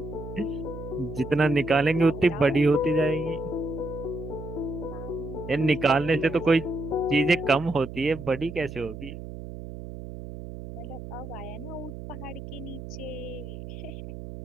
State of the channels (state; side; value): noise; right; hum, 10 dB below the sound